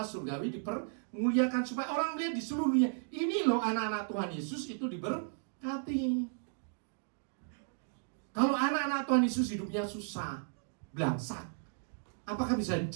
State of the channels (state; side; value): silent; left; digital silence